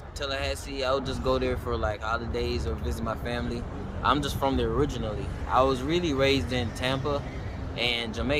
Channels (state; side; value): identical; both; correlation 1.00